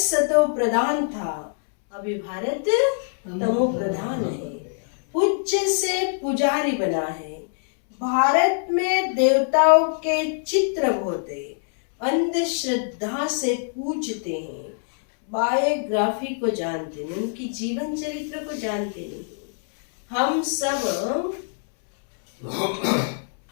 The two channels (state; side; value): silent; right; 63 dB below the other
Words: प्रधान था, अभी भारत तमो प्रधान है। पूज्य से पुजारी बना है। भारत में देवताओं के चित्र होते, अंधश्रद्धा से पूजते हैं। बायोग्राफी को जानते नहीं, उनकी जीवन चरित्र को जानते नहीं। हम